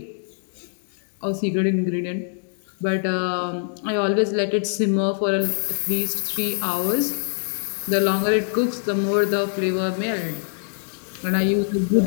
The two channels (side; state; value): right; silent; digital silence